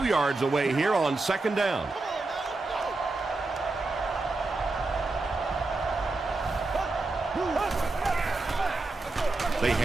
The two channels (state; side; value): quieter; left; 3.3 dB